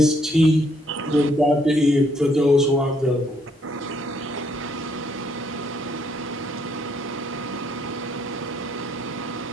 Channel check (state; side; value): normal; both; correlation 0.70